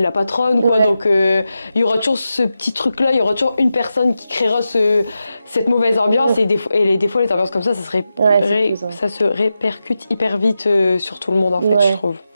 patronne quoi. Donc il y aura toujours ce petit truc là, il y aura toujours une personne qui créera cette mauvaise ambiance et des fois les ambiances comme ça ça se répercute hyper vite sur tout le monde en fait, je trouve.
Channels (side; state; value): both; inverted; correlation -0.90